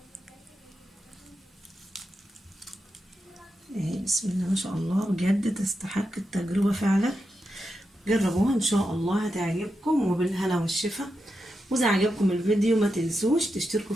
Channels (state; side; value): normal; both; correlation 0.87